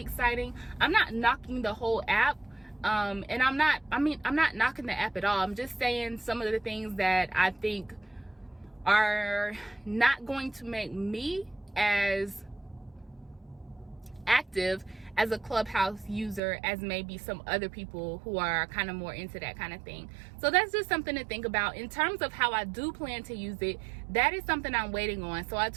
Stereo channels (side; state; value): left; drops out; at 16.4 s